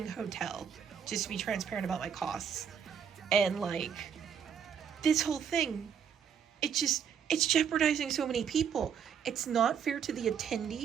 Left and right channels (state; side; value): quieter; left; 7.6 dB